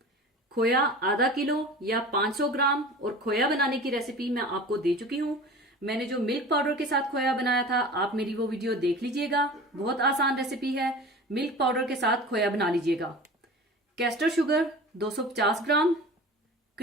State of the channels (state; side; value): normal; both; correlation 0.38